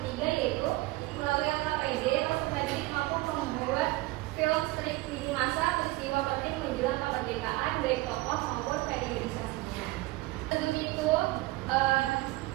yaitu melalui LKPD, peserta didik mampu membuat film strip lini masa peristiwa penting menjelang kemerdekaan baik tokoh maupun periodisasinya. Sebelum itu,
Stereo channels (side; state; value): left; quieter; 20.2 dB